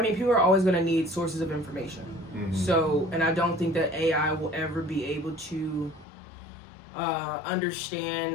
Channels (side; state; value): right; drops out; at 6.1 s